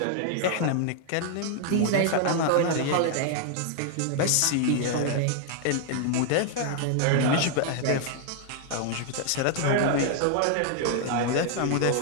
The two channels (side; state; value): both; different; correlation 0.00